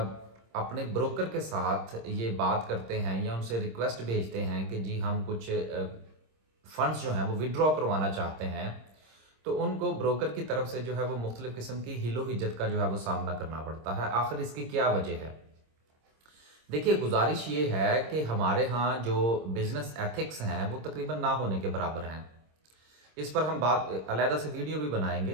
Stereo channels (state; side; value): late; left; 26 ms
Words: अपने ब्रोकर के साथ ये बात करते हैं या उनसे रिक्वेस्ट भेजते हैं कि जी हम कुछ फंड्स जो हैं वो विड्रॉ करवाना चाहते हैं, तो उनको ब्रोकर की तरफ से जो है वो मुख्तलिफ़ किस्म की हिलो हिज्जत का जो है वो सामना करना पड़ता है। आखिर इसकी क्या वजह है? देखिए, गुज़ारिश ये है कि हमारे यहाँ जो बिज़नेस एथिक्स हैं वो तकरीबन ना होने के बराबर हैं। इस पर हम बात अलहदा से वीडियो भी बनाएँगे।